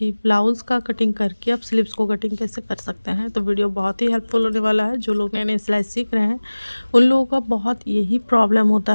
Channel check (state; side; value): inverted; both; correlation -1.00